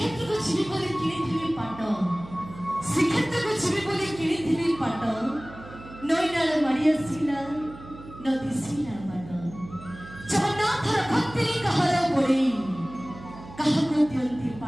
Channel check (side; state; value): right; noise; hum, 16 dB below the sound